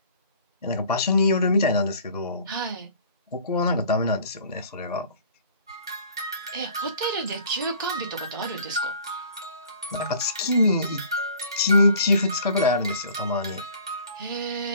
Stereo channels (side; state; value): both; inverted; correlation -0.50